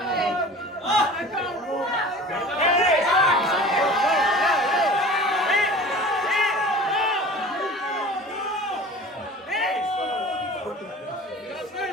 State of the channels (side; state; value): both; normal; correlation 0.41